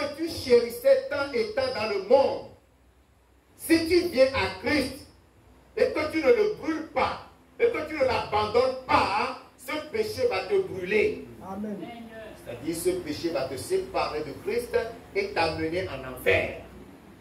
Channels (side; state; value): both; identical; correlation 1.00